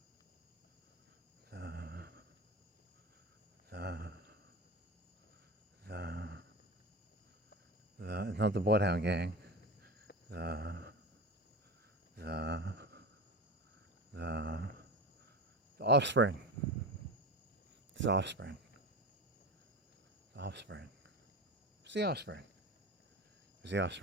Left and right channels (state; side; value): normal; both; correlation 0.26